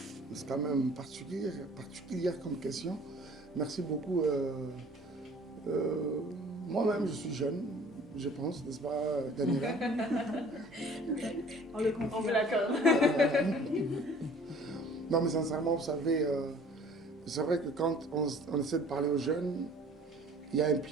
C'est quand même particulière comme question. Merci beaucoup. Moi-même, je suis jeune, je pense, n'est-ce pas, Daniela? On le confirme. On vous l'accorde. Non, mais sincèrement, vous savez, c'est vrai que quand on essaie de parler aux jeunes, il y a un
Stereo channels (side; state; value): both; normal; correlation 0.51